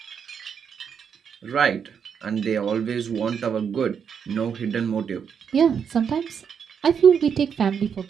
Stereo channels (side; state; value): left; quieter; 7.2 dB